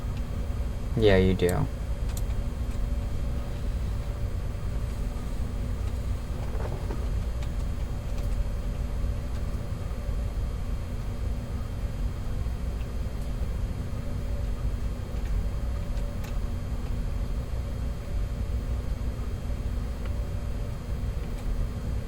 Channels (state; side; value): identical; both; correlation 1.00